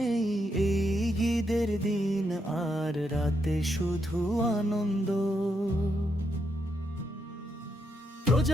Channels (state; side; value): normal; both; correlation 0.80